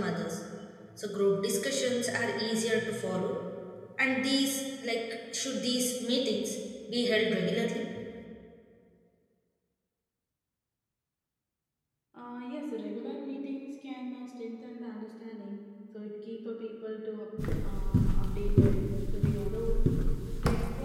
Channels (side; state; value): both; identical; correlation 1.00